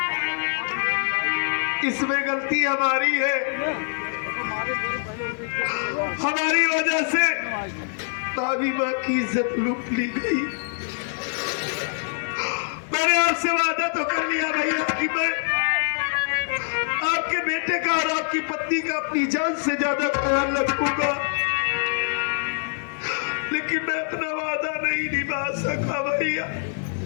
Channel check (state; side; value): silent; right; digital silence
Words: इसमें गलती हमारी है। हमारी वजह से भाभी माँ की इज्जत लूट ली गई। मैंने आपसे वादा तो कर लिया भैया कि मैं आपके बेटे का और आपकी पत्नी का अपनी जान से ज्यादा ख्याल रखूंगा, लेकिन मैं अपना वादा नहीं निभा सका भैया।